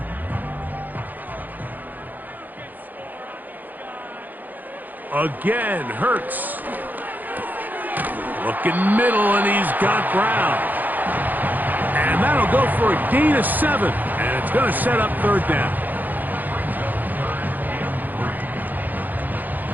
Again, Hurts. Looking middle, and he's got Brown. And that'll go for a gain of 7, and it's going to set up 3rd down.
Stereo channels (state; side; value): late; left; 0.084 ms